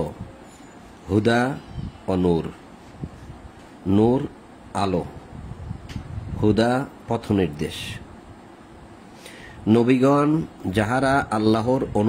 হুদা ও নূর। নূর আলো, হুদা পথ নির্দেশ। নবীগণ যাহারা আল্লাহর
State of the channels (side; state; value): both; identical; correlation 1.00